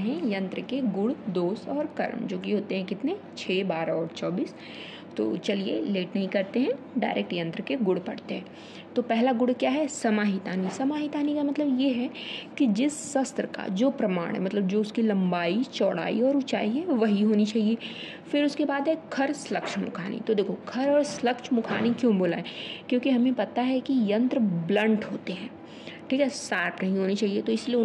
हैं यंत्र के गुण, दोष और कर्म, जो कि होते हैं कितने 6, 12 और 24। तो चलिए लेट नहीं करते हैं, डायरेक्ट यंत्र के गुण पढ़ते हैं। तो पहला गुण क्या है? समाहितानी। समाहितानी का मतलब ये है कि जिस शस्त्र का जो प्रमाण है, मतलब जो उसकी लंबाई, चौड़ाई और ऊंचाई है वही होनी चाहिए। फिर उसके बाद है खर श्लक्ष मुखानी। तो देखो, खर और श्लक्ष मुखानी क्यों बोला है? क्योंकि हमें पता है कि यंत्र ब्लंट होते हैं, ठीक है, शार्प नहीं होनी चाहिए। तो इसलिए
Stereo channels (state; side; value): identical; both; correlation 1.00